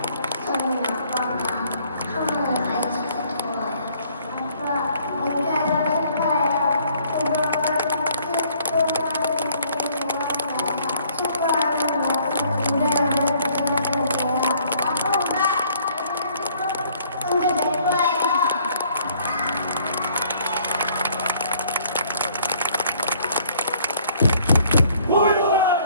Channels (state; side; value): inverted; both; correlation -0.61